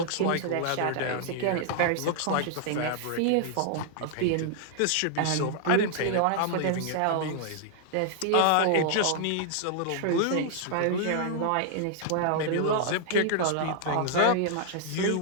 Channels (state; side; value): different; both; correlation -0.01